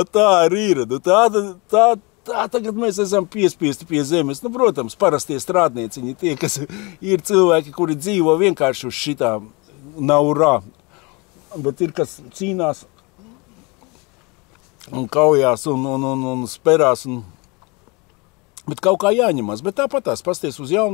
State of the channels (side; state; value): right; quieter; 27.8 dB